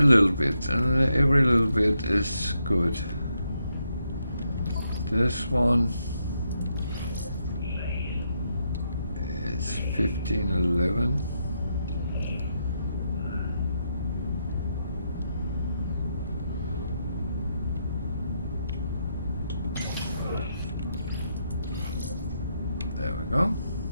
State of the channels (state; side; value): inverted; both; correlation -0.80